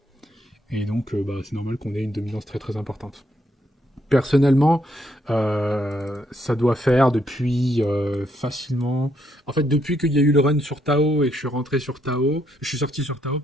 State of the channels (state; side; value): normal; both; correlation 0.74